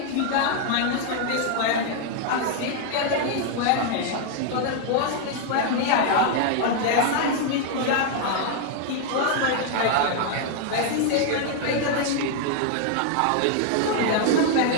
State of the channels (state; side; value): different; both; correlation 0.00